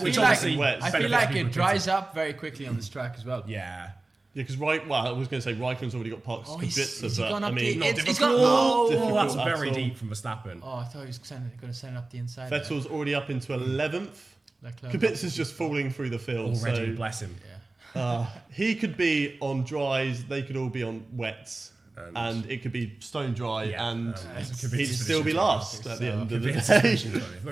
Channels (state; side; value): quieter; left; 3.1 dB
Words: which feel like- obviously wet. I feel benefits like people it with dries up very quickly on this track as well. Yeah. Yeah, because I was going to say Raikkonen's already got parked Oh, he's Kubica, gone but I up mean, the- Not It's difficult. got- difficult that's at very all. deep from Verstappen. Oh, I thought he was going to send up the inside. Vettel's already up into 11th. Leclerc. Kubica's just falling through the field. Already, So bless him. Yeah. he could be on dries, they could all be on wets, and it could be stone dry, Yeah, and Kubica's he'd still be position. last at the end of the Kubica's day. position, sorry.